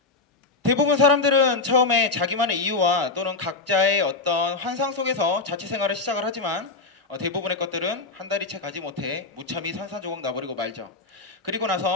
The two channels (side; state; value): right; quieter; 3.8 dB